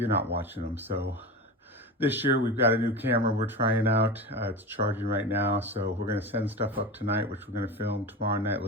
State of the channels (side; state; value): both; normal; correlation 0.26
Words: not watching them. So this year we've got a new camera we're trying out. It's charging right now, so we're gonna send stuff up tonight, which we're gonna film tomorrow night, a